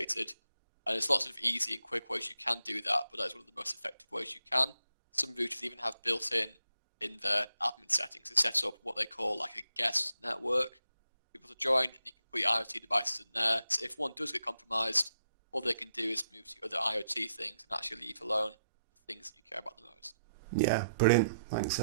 And there's lots of easy and quick ways you can do that, but that's one of the most effective ways you can. Some routers even have built-in their admin settings to set up what they call like a guest network. People to join, and you can put your IoT devices in there. So if one does get compromised, all they can do is move to other IoT things and actually leave alone the things that you care about the most. Yeah, brilliant. Thanks,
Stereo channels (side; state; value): both; inverted; correlation -0.80